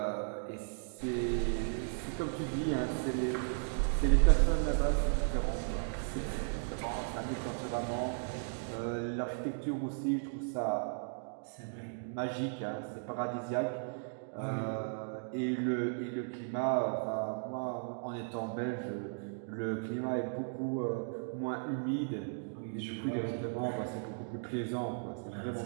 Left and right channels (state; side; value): silent; left; digital silence